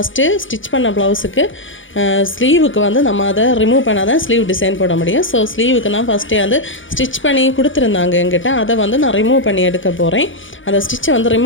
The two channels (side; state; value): right; late; 0.56 ms